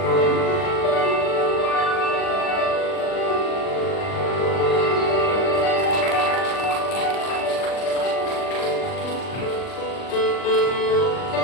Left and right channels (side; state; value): right; late; 39 ms